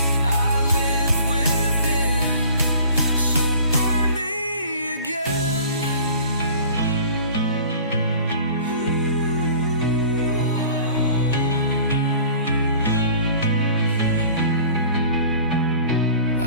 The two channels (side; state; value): both; inverted; correlation -0.46